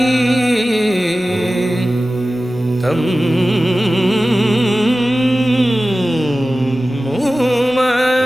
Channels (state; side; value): noise; right; rumble, 27 dB below the sound